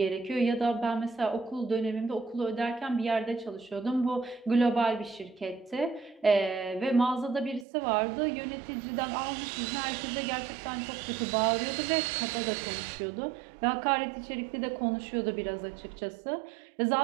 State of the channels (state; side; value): drops out; left; at 7.7 s